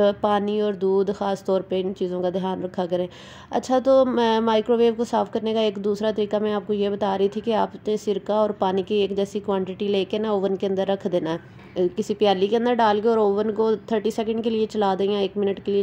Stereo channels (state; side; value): identical; both; correlation 1.00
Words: पानी और दूध ख़ास तौर पे इन चीज़ों का ध्यान रखा करें। अच्छा, तो माइक्रोवेव को साफ़ करने का एक दूसरा तरीका मैं आपको ये बता रही थी कि आपने सिरका और पानी की एक जैसी क्वांटिटी लेके ना ओवन के अंदर रख देना है, किसी प्याली के अंदर डाल के, और ओवन को 30 सेकंड के लिए चला दें या 1 मिनट के लिए